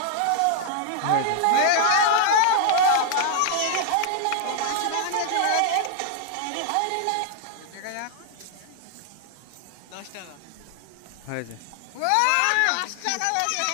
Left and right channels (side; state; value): both; different; correlation 0.00